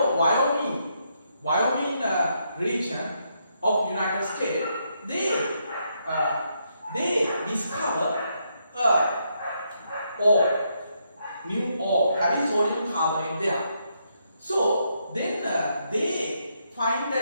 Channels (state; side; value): inverted; both; correlation -0.77